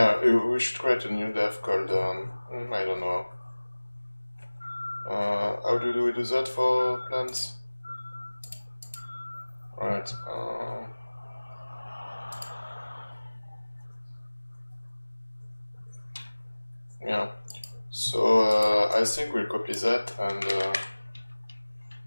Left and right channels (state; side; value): inverted; both; correlation -1.00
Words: we should create a new def called, I don't know. How do we do that for plants? Right. Yeah. So I think we'll copy that and